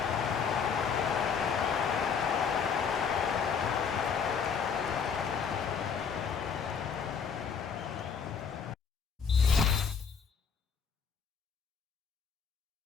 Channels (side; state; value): right; quieter; 6.4 dB